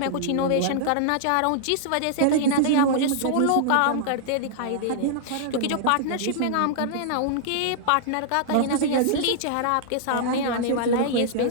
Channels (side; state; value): both; different; correlation -0.01